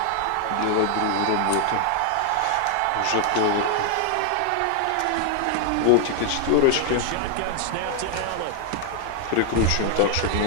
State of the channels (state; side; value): different; both; correlation 0.00